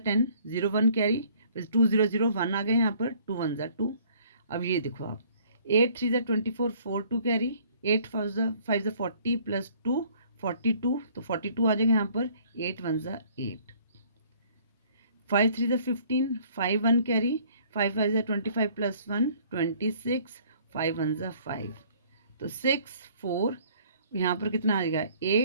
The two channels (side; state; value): both; inverted; correlation -0.58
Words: 10 0 1 कैरी, फिर 2 0 0 1 आ गए यहाँ पर, 2 1 2। अब ये देखो आप 8 3 24 4 2 कैरी, 8 5 40 प्लस 2 42, तो 42 आ जाएगा यहाँ पर, 8 1 8, 5 3 15 5 1 कैरी, 5 5 25 प्लस 1 26, 5 1 5, तो 6 4, यहाँ पर कितना आ जाएगा